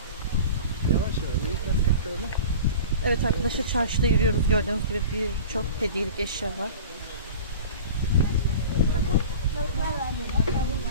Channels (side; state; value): both; inverted; correlation -0.37